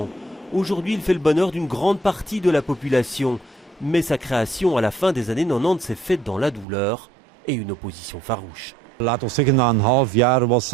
Aujourd'hui, il fait le bonheur d'une grande partie de la population. Mais sa création à la fin des années 90 s'est faite dans la douleur et une opposition farouche.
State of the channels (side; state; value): left; drops out; at 6.7 s